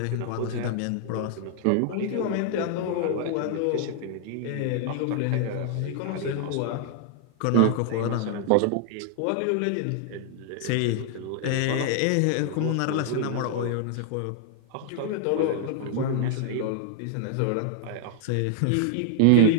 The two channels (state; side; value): different; both; correlation -0.01